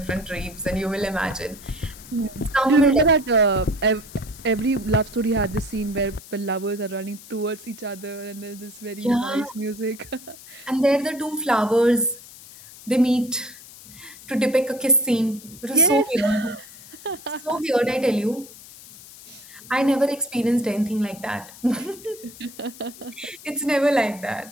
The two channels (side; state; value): left; noise; hiss, 18 dB below the sound